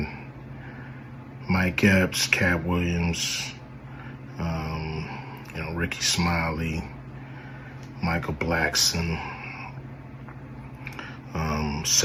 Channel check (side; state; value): both; identical; correlation 1.00